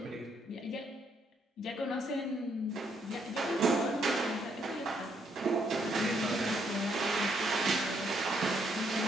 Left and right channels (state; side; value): normal; both; correlation 0.73